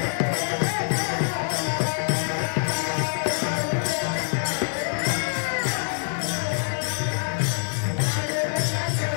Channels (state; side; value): silent; right; 62 dB below the other